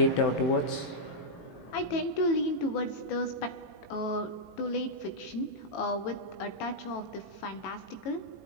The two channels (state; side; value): late; right; 18 ms